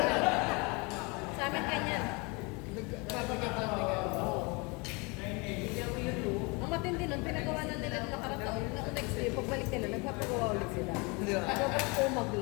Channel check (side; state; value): right; quieter; 28.7 dB